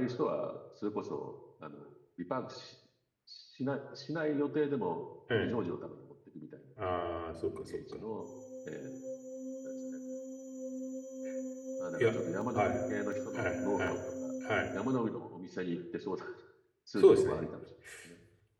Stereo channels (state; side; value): identical; both; correlation 1.00